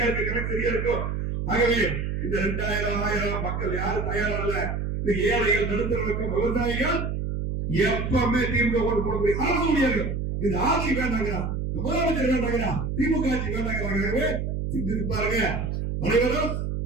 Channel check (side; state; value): right; noise; hum, 2 dB below the sound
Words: இருக்கு, கணக்கு சரியா இருக்கும். ஆகவே இந்த 2000 1000 மக்கள் யாரும் தயாரா இல்ல. இந்த ஏழைகள், நடுத்தரவர்க்கம், விவசாயிகள் எப்பவுமே திமுக ஓட்டு போட முடியும். அரசு முடியாது. இந்த ஆட்சி வேண்டாங்க, முதலமைச்சர் வேண்டாங்க, திமுக ஆட்சி வேண்டாங்க. சிந்தித்து பாருங்க. அனைவரும்